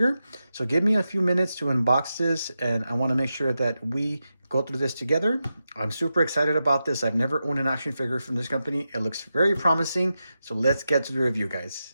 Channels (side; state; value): both; inverted; correlation -0.90